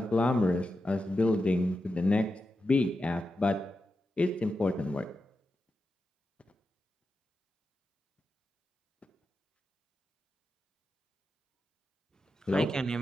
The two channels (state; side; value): normal; both; correlation 0.89